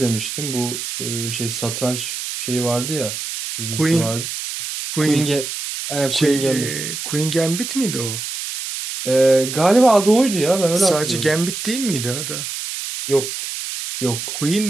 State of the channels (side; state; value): right; noise; hiss, 6 dB below the sound